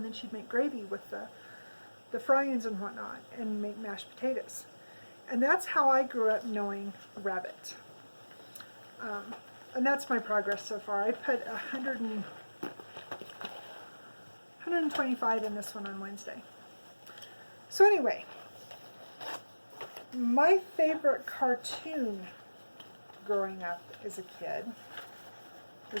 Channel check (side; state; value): both; inverted; correlation -1.00